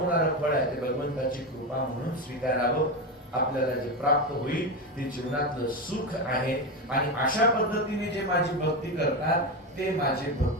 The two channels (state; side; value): normal; both; correlation 0.15